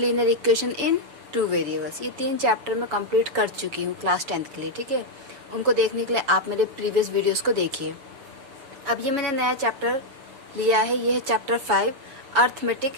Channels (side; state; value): left; late; 7.1 ms